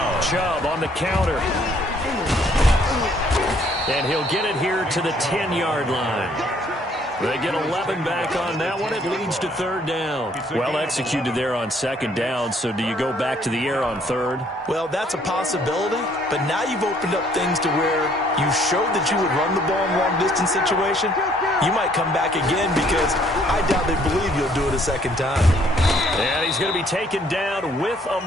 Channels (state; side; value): normal; both; correlation 0.63